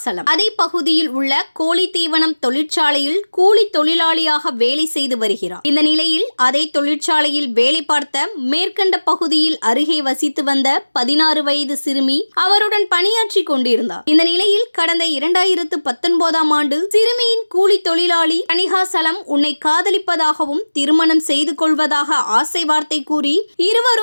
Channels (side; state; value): both; inverted; correlation -1.00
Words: அதே பகுதியில் உள்ள கோழி தீவனம் தொழிற்சாலையில் கூலி தொழிலாளியாக வேலை செய்து வருகிறார். இந்த நிலையில் அதே தொழிற்சாலையில் வேலை பார்த்த மேற்கண்ட பகுதியில் அருகே வசித்து வந்த 16 வயது சிறுமி அவருடன் பணியாற்றி கொண்டிருந்தார். இந்த நிலையில் கடந்த 2019ஆம் ஆண்டு சிறுமியின் கூலி தொழிலாளி தணிகாசலம் உன்னை காதலிப்பதாகவும் திருமணம் செய்து கொள்வதாக ஆசை வார்த்தை கூறி